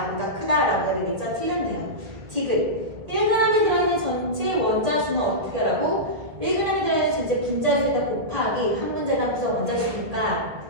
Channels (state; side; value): late; left; 1.8 ms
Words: 크다라고 해야 되겠죠? 틀렸네요. 디귿 1g이 들어있는 전체 원자수는 어떻게 하라고? 1g이 들어있는 전체 분자수에다 곱하기 한 문제당 구성 원자수니까